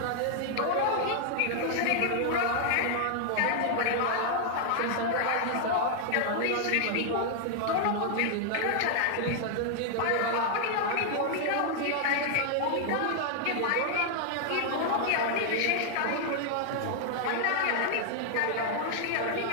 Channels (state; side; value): different; both; correlation 0.00